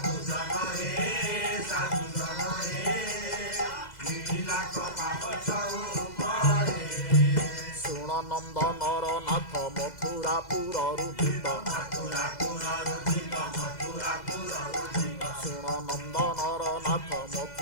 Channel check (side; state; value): right; late; 2.0 ms